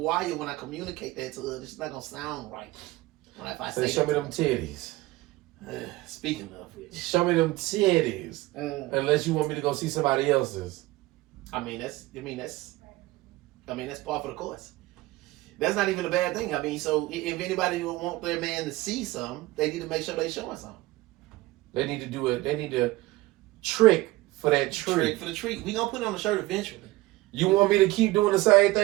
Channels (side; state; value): left; quieter; 19.0 dB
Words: when I communicate that to her. It's not gonna sound right. If I Say, say show me them titties. Speaking of which, Show me them titties. Unless you want me to go see somebody else's. I mean that's part of the course. That's not even a bad thing. I mean, so if anybody want their man to see something, they need to make sure they showing something. They need to do it. They need to trick for that treat. Trick for the treat. We gonna put it on the shirt eventually. You want me to keep doing the same